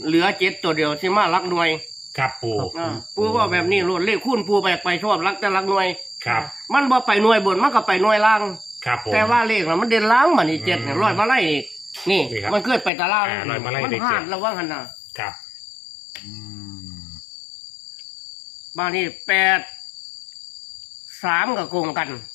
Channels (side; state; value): right; drops out; at 12.9 s